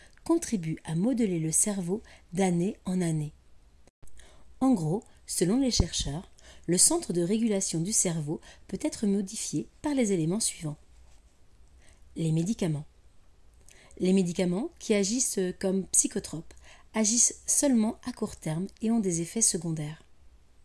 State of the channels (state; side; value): identical; both; correlation 1.00